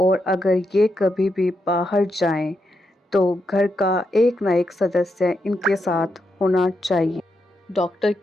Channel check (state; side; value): normal; both; correlation 0.83